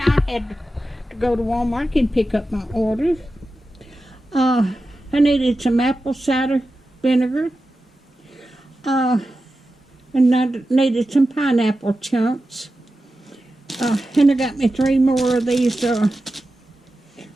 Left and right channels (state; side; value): normal; both; correlation 0.92